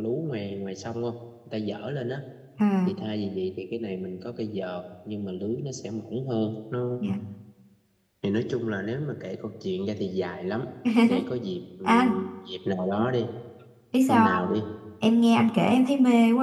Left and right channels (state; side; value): identical; both; correlation 1.00